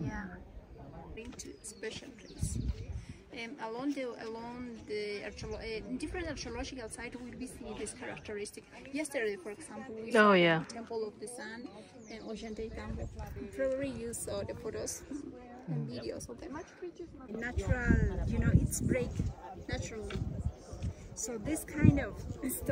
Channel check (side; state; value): both; identical; correlation 1.00